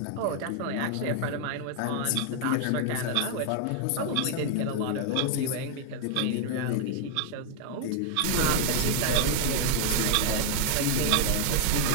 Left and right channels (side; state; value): both; different; correlation 0.00